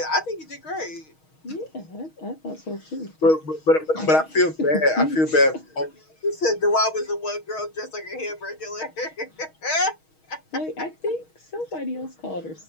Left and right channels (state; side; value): late; right; 6.3 ms